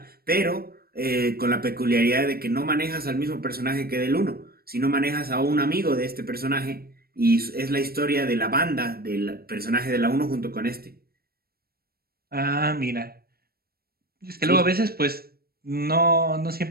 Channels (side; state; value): left; late; 0.44 ms